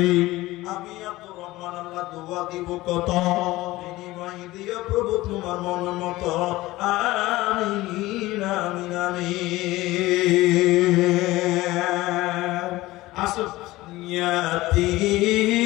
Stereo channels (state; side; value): quieter; right; 18.4 dB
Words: আমি আব্দুর রহমান আল্লাহ দোয়া দিব কত, বিনিময় দিও প্রভু তোমার মন মতো। আমিন আমিন আমিন। আসুন ইয়াতীম